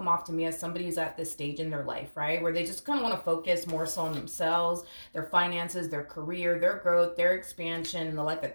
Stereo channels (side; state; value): both; inverted; correlation -1.00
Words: off to me as somebody who's at this stage in their life, right? Where they just kind of want to focus more so on themselves, their finances, their career, their growth, their expansion, and the life that